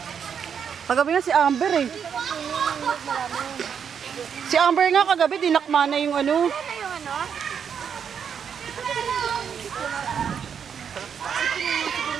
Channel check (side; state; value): left; quieter; 7.5 dB